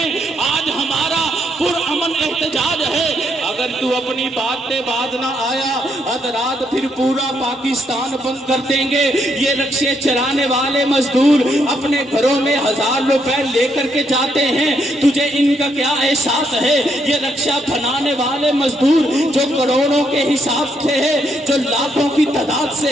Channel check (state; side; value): normal; both; correlation 0.76